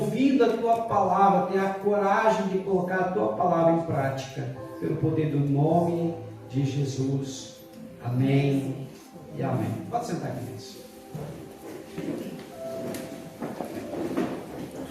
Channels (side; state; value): both; identical; correlation 1.00